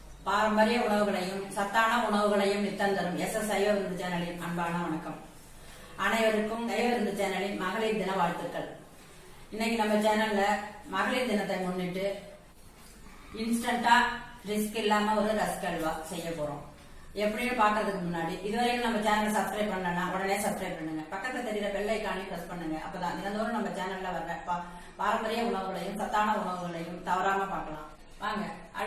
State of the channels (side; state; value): both; identical; correlation 1.00